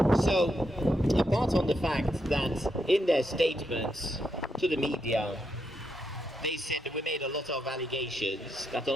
So, apart from the fact that in their statements to the media, they said that we made a lot of allegations that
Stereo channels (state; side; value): normal; both; correlation 0.81